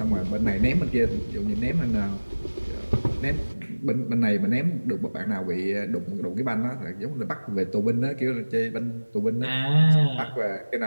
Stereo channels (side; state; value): both; inverted; correlation -1.00